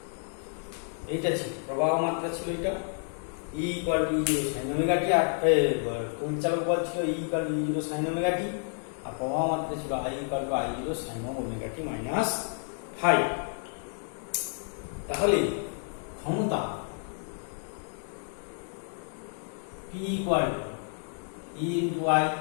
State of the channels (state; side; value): silent; right; 58 dB below the other